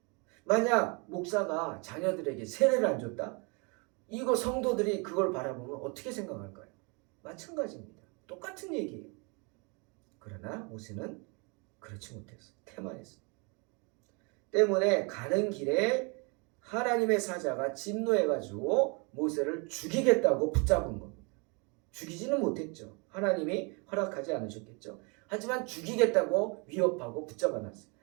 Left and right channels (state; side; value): quieter; left; 32.0 dB